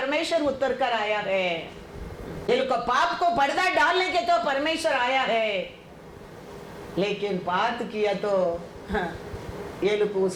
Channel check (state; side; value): identical; both; correlation 1.00